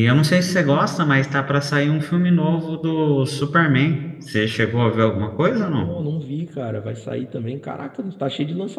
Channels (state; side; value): identical; both; correlation 1.00